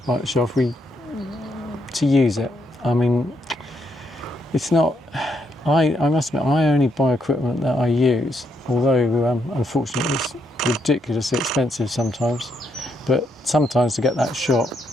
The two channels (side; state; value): both; normal; correlation 0.76